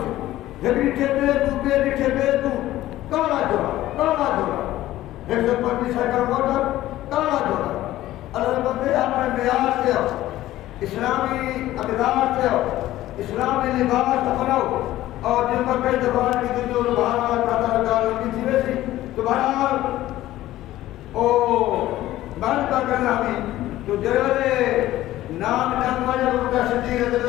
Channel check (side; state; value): right; quieter; 15.0 dB